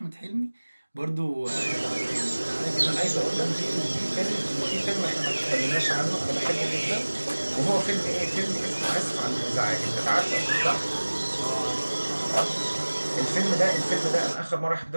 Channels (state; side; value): inverted; both; correlation -1.00